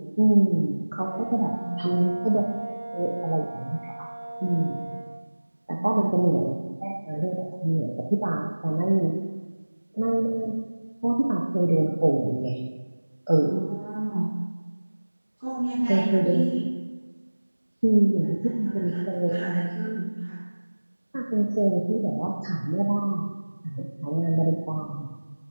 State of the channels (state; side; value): inverted; both; correlation -1.00